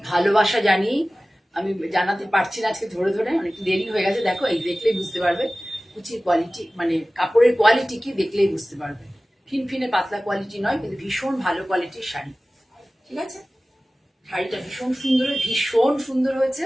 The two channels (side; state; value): both; normal; correlation 0.97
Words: জানিয়ে, আমি জানাতে পারছি না আজকে ধরে ধরে, অনেক দেরি হয়ে গেছে। দেখো এই দেখলেই বুঝতে পারবে কুচির কোয়ালিটি, মানে কাপড়ের কোয়ালিটি কি দেখলেই বুঝতে পারবে। ফিনফিনে পাতলা কোয়ালিটি নয়, কিন্তু ভীষণ ভালো কোয়ালিটির শাড়ি। ঠিক আছে, শাড়িটা ভীষণ সুন্দর হয়েছে।